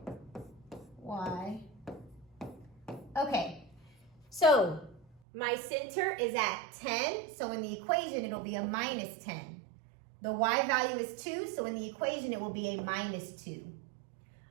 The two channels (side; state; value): left; drops out; at 5.2 s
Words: y. Okay, so my center is at 10, so in the equation it'll be a -10. The y value is 2, so in the equation it will be a -2.